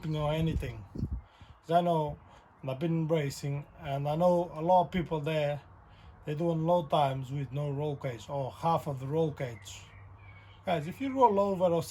or anything. Because I know, and I've been racing, and I know a lot of people there, they're doing low times with no roll cage or half of the roll cage. Guys, if you roll over or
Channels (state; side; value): identical; both; correlation 1.00